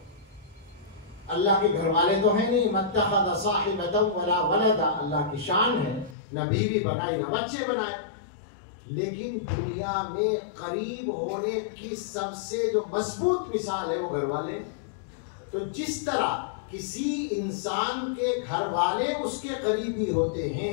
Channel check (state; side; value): drops out; right; at 6.2 s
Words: اللہ کے گھر والے تو ہیں نہیں. متخذ صاحبۃ ولا ولدا, اللہ کی شان ہے, نہ بیوی بنائی نہ بچے بنائے. لیکن دنیا میں قریب ہونے کی سب سے جو مضبوط مثال ہے وہ گھر والے. تو جس طرح کسی انسان کے گھر والے اس کے قریبی ہوتے